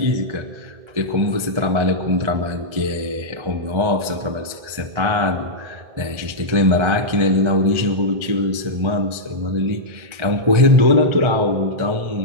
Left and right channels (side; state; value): left; late; 1.4 ms